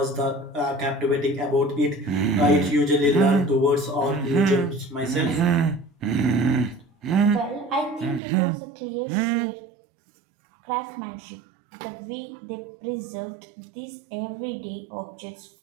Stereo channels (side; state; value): left; drops out; at 8.2 s